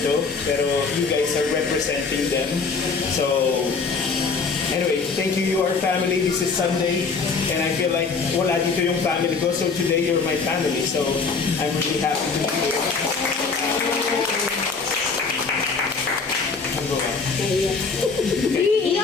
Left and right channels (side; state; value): right; quieter; 4.8 dB